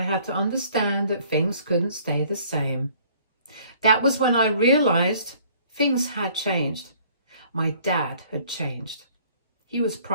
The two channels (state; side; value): inverted; both; correlation -0.57